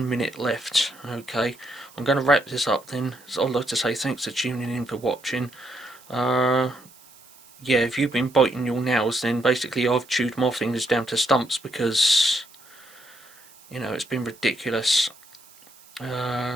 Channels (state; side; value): noise; right; hiss, 25 dB below the sound